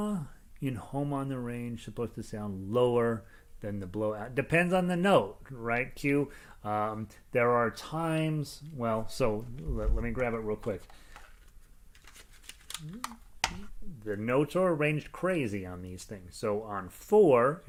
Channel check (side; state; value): both; identical; correlation 1.00